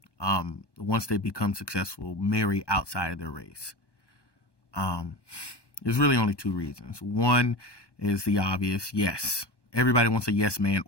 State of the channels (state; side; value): late; right; 1.1 ms